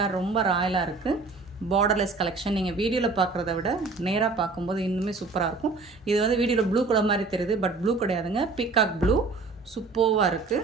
ரொம்ப ராயலாக இருக்குது. Borderless collection. நீங்கள் வீடியோவில் பார்க்குறத விட நேராக பார்க்கும்போது இன்னுமே சூப்பராக இருக்கும். இது வந்து வீடியோவில் ப்ளூ கலர் மாதிரி தெரியுது, பட் ப்ளூ கிடையாதுங்க. பீகாக் ப்ளூ சூப்பராக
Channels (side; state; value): left; quieter; 3.9 dB